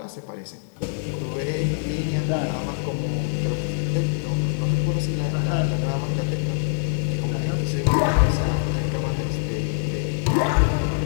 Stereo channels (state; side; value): silent; right; 63 dB below the other